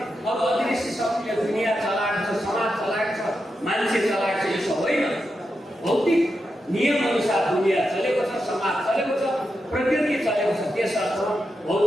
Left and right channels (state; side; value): normal; both; correlation 0.87